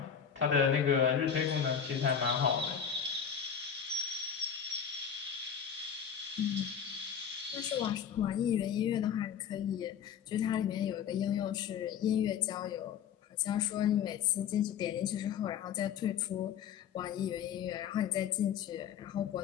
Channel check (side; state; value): right; quieter; 8.0 dB